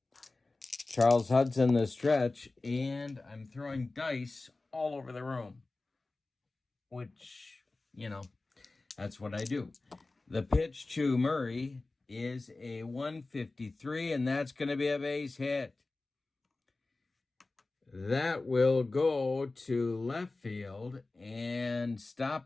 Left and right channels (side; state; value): right; quieter; 3.3 dB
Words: Charles Hudson the stretch, and I'm throwing dice all over the room, which, you know, that's what I do. The pitch to Murray is a 153, and that's going to be a base hit. That will go to left field, and